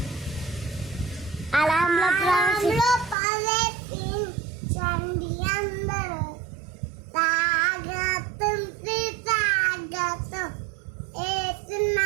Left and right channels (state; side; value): drops out; left; at 3.2 s